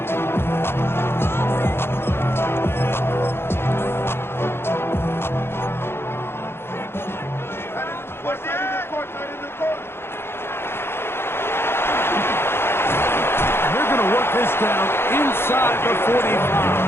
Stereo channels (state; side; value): late; right; 0.11 ms